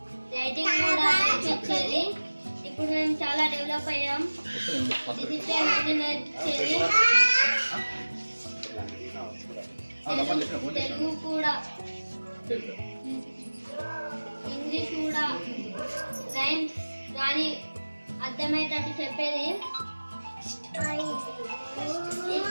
రైటింగ్ కూడా నేర్పించేది. ఇప్పుడు మేము చాలా డెవలప్ అయ్యాం. డిసిప్లిన్ అన్ని నేర్పించేది, తెలుగు కూడా, ఇంగ్లీష్ కూడా, రైమ్స్ కానీ అర్థమయ్యేటట్టు చెప్పేది.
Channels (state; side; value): inverted; both; correlation -1.00